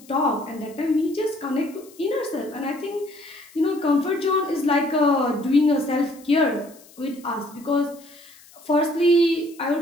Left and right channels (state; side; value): noise; left; hiss, 24 dB below the sound